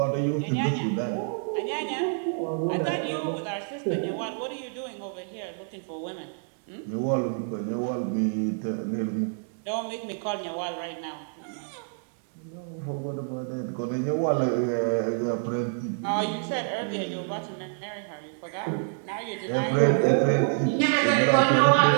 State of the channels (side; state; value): left; silent; 60 dB below the other